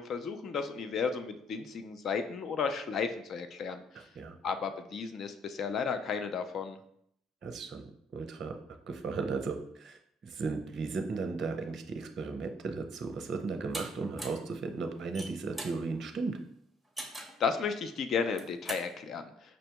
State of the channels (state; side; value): normal; both; correlation 0.65